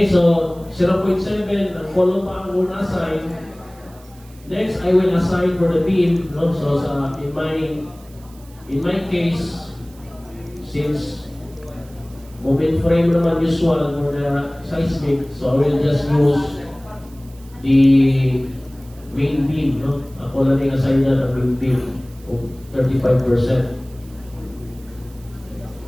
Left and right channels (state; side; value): noise; right; hiss, 26 dB below the sound